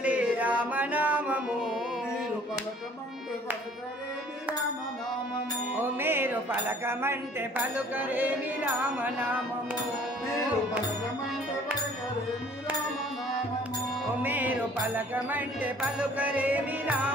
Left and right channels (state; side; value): normal; both; correlation 0.54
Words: రామనామము ఓ మీరు పలకమంటే పలుకరేమి రామనామము ఓ మీరు పలకమంటే పలుకరేమి